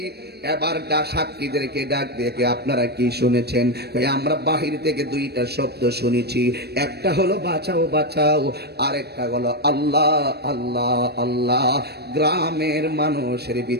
এবার সাক্ষীদেরকে ডাক দেখে আপনারা কি শুনেছেন? আমরা বাহির থেকে দুইটা শব্দ শুনেছি, একটা হলো বাঁচাও বাঁচাও, আরেকটা হলো আল্লাহ আল্লাহ আল্লাহ। গ্রামের মানুষের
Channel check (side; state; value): left; late; 0.47 ms